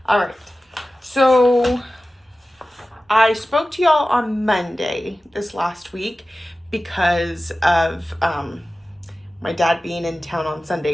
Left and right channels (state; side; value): normal; both; correlation 0.96